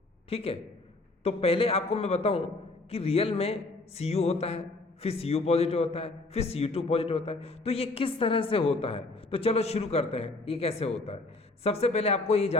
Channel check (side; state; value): right; quieter; 3.1 dB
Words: ठीक है। तो पहले आपको मैं बताऊं कि रियल में Cu होता है, फिर Cu पॉजिटिव होता है, फिर Cu2 पॉजिटिव होता है। तो ये किस तरह से होता है, तो चलो शुरू करते हैं ये कैसे होता है। सबसे पहले आपको ये